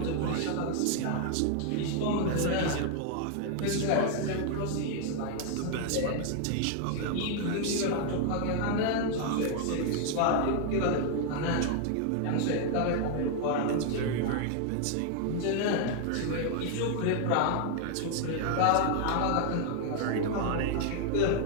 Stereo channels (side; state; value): both; different; correlation 0.00